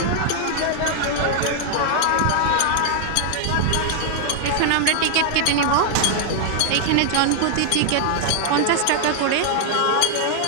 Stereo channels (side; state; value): both; different; correlation 0.00